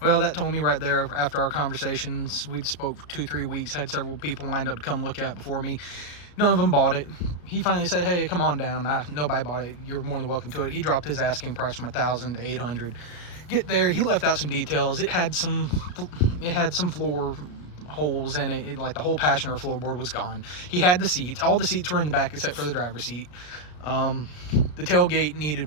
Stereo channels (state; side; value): late; right; 34 ms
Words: Well, that told me right there after our conversations. We'd spoke for 2-3 weeks, had several people lined up to come look at it before me. None of them bought it. He finally said, hey, come on down. Nobody bought it. You're more than welcome to it. He dropped his asking price from $1,000 to $800. Get there, he left out some details. It had some floor holes in it. Like the whole passenger floorboard was gone. He had the seats. All the seats were in the back except for the driver's seat. The tailgate needed